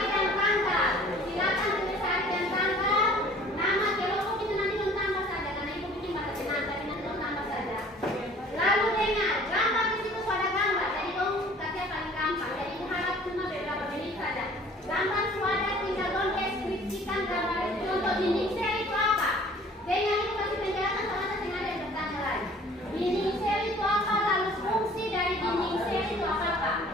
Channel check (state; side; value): normal; both; correlation 0.51